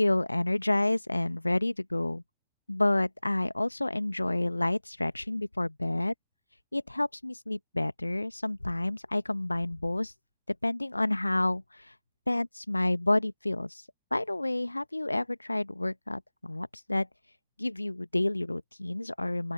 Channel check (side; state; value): both; inverted; correlation -1.00